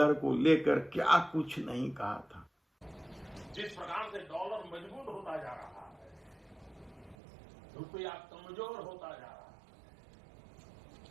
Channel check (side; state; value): left; drops out; at 7.2 s